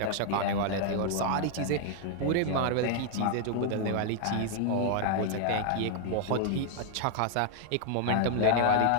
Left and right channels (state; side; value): different; both; correlation 0.00